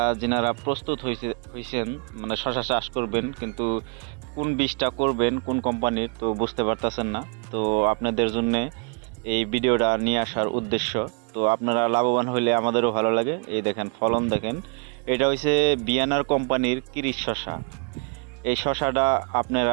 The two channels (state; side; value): quieter; left; 36.4 dB